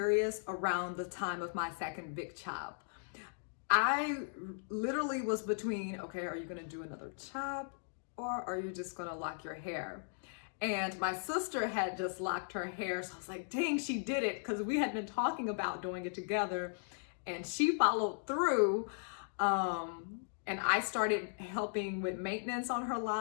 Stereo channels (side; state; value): right; silent; digital silence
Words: around the time of my second big chop. I literally was between, okay, are you gonna do another chop or are you just gonna lock your hair? And my sister had just locked her hair, so I was like, dang, she did it, because we had been talking about doing it together, and she followed through. And I started helping with maintenance on her